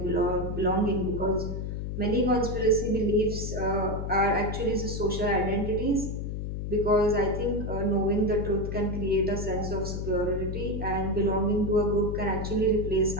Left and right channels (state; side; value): noise; left; hum, 4 dB below the sound